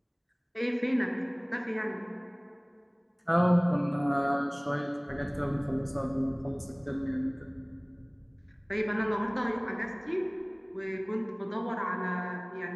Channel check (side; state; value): both; identical; correlation 1.00